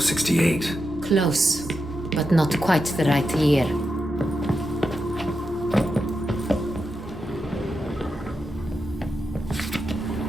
Close, but not quite the right year.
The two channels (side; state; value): both; normal; correlation 0.87